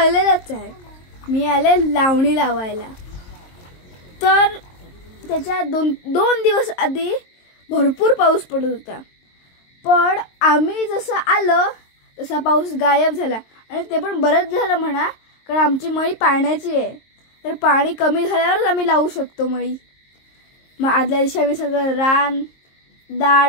आहे। मी आले लावणी लावायला। तर त्याच्या दोन दिवस आधी भरपूर पाऊस पडत होता, पण आम्ही जसं आलो तसा पाऊस गायब झाला। आणि ते पण बरंच झालं म्हणा, कारण आमची मळी पाण्याची आहे, तर पाणी कमी झाल्यावरच आम्ही लावू शकतो मळी। मग आदल्या दिवशी आम्ही सगळं रान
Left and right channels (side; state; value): right; late; 22 ms